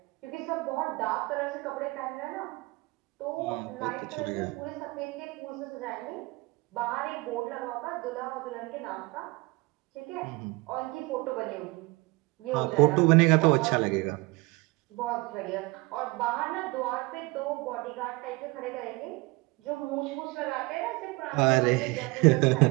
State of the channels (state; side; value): quieter; left; 24.5 dB